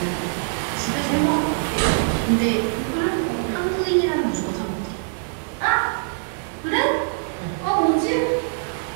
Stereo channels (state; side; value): silent; left; digital silence